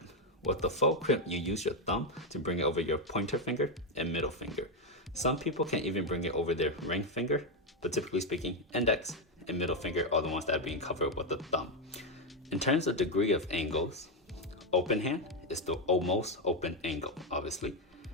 With the faux crimp, you use your thumb to bring it over your pointer finger and middle finger. Some people can even bring it over their ring finger, but typically speaking, index and middle finger are the ones that are being covered with the thumb. In terms of degree of angles, open hand is the almost open angle, obviously.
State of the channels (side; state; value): both; normal; correlation 0.05